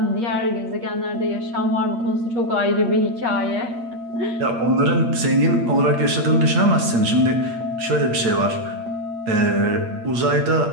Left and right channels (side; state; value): left; late; 8.5 ms